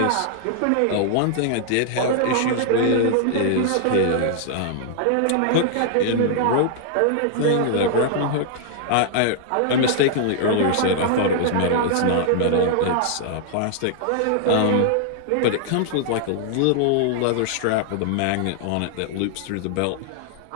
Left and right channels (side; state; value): both; different; correlation 0.00